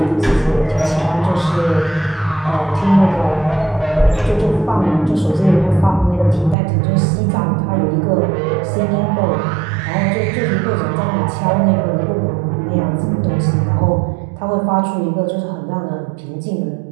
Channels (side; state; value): left; drops out; at 6.6 s